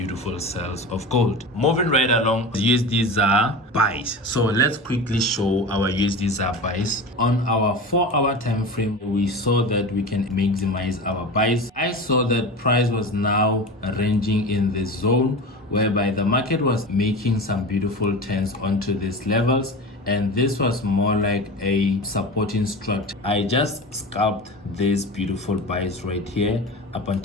sales of gold. Moving right along, USD ZAR buys. So let's quickly show our USD ZAR buys. On our 4 hour time frame, we saw that we can maximize our buys. I saw that price was now ranging in this zone, whereby the market was making some beautiful turns onto these levels, and this was more like a supporting structure. I just scalped these beautiful buys right here up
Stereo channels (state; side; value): normal; both; correlation 0.29